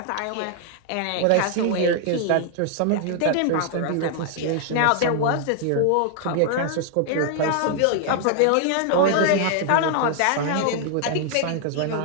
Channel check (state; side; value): different; both; correlation 0.00